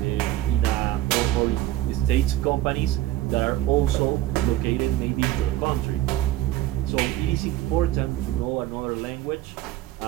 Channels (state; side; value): quieter; left; 14.7 dB